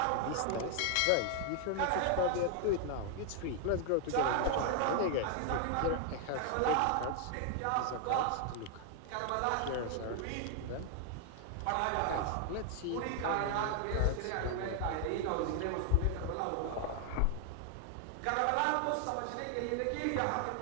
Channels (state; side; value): different; both; correlation 0.00